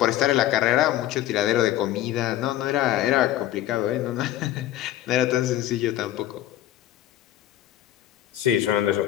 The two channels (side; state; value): right; quieter; 13.3 dB